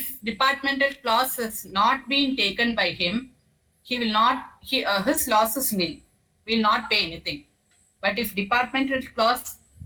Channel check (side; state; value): both; identical; correlation 1.00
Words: departmental clause has not been taken by him, he will not, his loss is nil, will not pay anything. But if departmental clause